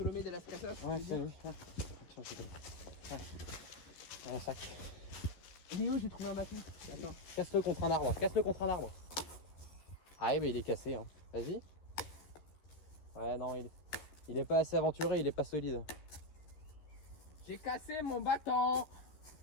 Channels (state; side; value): late; right; 13 ms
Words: de las Casas. Ouais, c'est lui. Ouais. Un sac. Léo, j'ai trouvé un bâton. Attends. Casse-le contre un arbre. Casse-le contre un arbre. Ah oui, mais il est cassé. Hein. Vas-y. Ouais, non, il est pas assez aventuré, il est pas solide. J'ai cassé mon bâton.